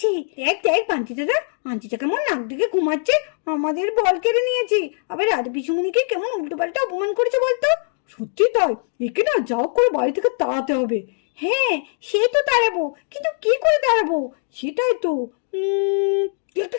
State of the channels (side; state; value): right; silent; digital silence